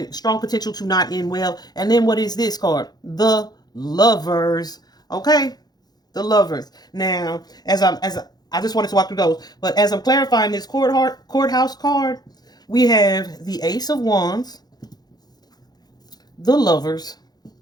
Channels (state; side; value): late; right; 0.19 ms